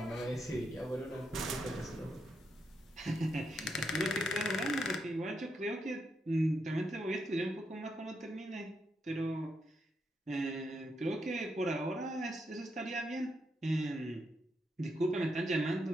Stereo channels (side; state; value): both; normal; correlation 0.81